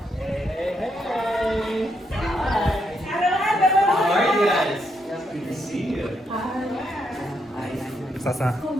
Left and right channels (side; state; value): both; normal; correlation 0.78